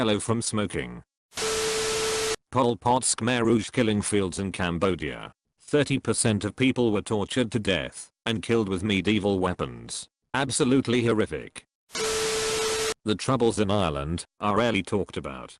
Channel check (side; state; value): both; identical; correlation 1.00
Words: from smoking. Pol Pot's Khmer Rouge killing fields in Cambodia. 30% of people were tortured to death and killed with medieval weapons. Absolutely horrific. The troubles in Ireland are rarely talked about.